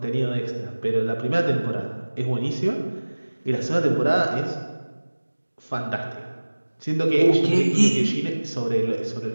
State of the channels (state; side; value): inverted; both; correlation -1.00